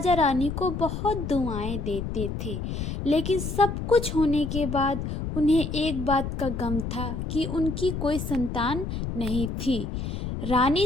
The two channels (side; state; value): left; noise; rumble, 4 dB below the sound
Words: रानी को बहुत दुआएं देते थे। लेकिन सब कुछ होने के बाद उन्हें एक बात का गम था कि उनकी कोई संतान नहीं थी। रानी